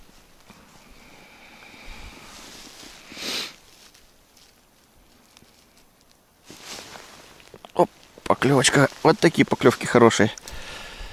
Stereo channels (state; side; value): identical; both; correlation 1.00